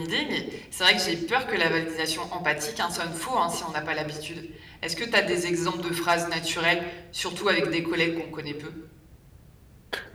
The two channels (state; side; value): identical; both; correlation 1.00